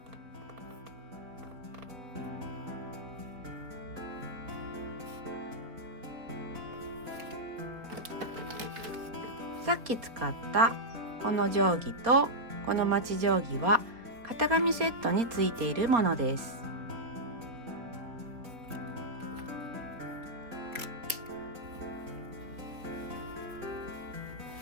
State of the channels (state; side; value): late; left; 4.1 ms